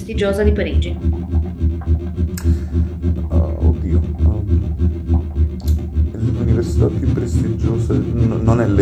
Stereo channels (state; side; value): identical; both; correlation 1.00